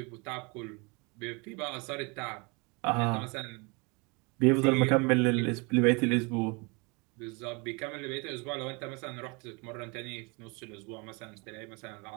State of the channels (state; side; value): quieter; left; 29.5 dB